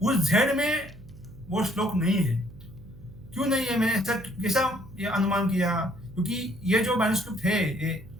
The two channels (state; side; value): noise; right; hum, 19 dB below the sound